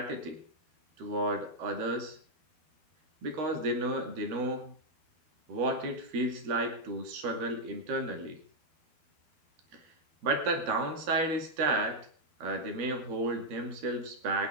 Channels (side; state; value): left; late; 12 ms